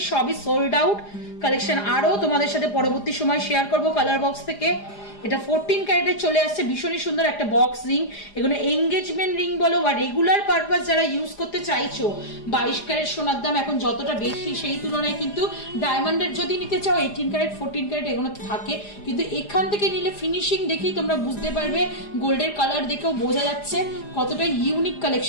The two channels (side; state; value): right; late; 4.9 ms